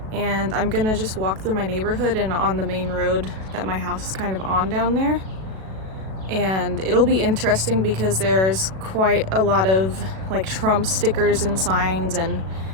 and I'm gonna just walk through my neighborhood and on the main road that my house is kind of on down there. And it'll be interesting because there's quite a lot of like Trump stickers and signs and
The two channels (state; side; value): late; left; 37 ms